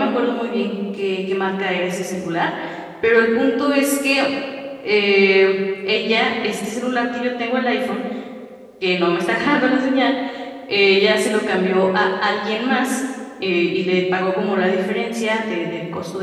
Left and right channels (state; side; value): identical; both; correlation 1.00